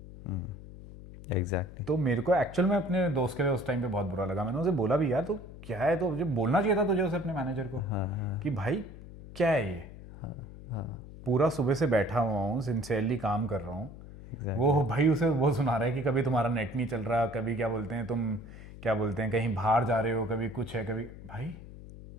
एग्जैक्टली। तो मेरे को एक्चुअल में अपने दोस्त के लिए उस टाइम पे बहुत बुरा लगा। मैंने उसे बोला भी, यार तो क्या है, तो मुझे बोलना चाहिए था तुझे उसे, अपने मैनेजर को, कि भाई क्या है ये, पूरा सुबह से बैठा हुआ हूँ, सिंसियरली काम कर रहा हूँ, वो भाई उसे वो सुना रहा है कि कभी तुम्हारा नेट नहीं चल रहा, कभी क्या बोलते हैं तुम क्या बोलते हैं कहीं बाहर जा रहे हो, कभी कुछ है, कभी भाई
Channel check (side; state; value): left; noise; hum, 15 dB below the sound